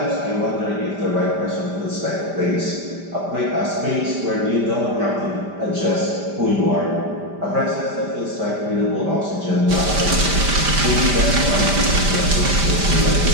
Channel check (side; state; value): left; late; 5.1 ms